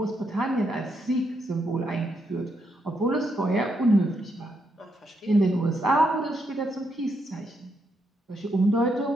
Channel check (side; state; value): both; normal; correlation 0.79